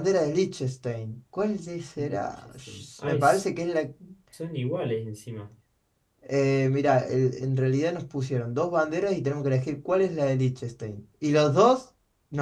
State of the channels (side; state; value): both; identical; correlation 1.00